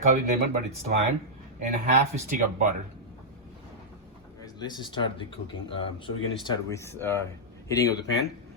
it lemon, but it's lime, and half a stick of butter. Guys, let's start the cooking. So we're gonna start with heating of the pan.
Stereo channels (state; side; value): normal; both; correlation -0.08